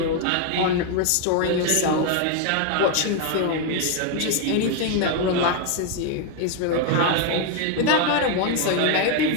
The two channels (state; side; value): different; both; correlation 0.01